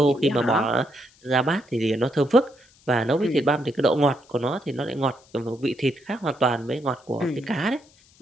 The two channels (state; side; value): noise; left; hiss, 29 dB below the sound